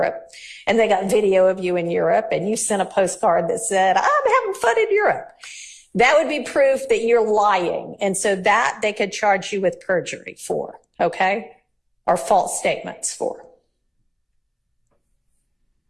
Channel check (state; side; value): identical; both; correlation 1.00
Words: and they got video of you in Europe and you sent a postcard that said, I'm having fun in Europe. That would be proof that you're lying. And so that they could charge you with perjury for, okay? Or false statements for.